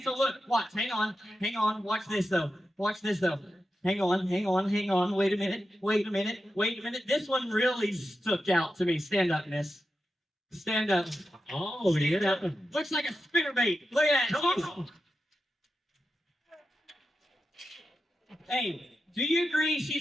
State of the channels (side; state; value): both; normal; correlation 0.90